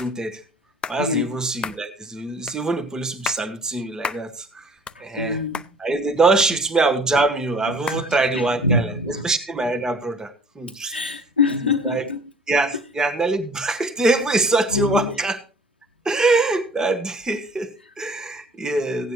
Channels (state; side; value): normal; both; correlation 0.50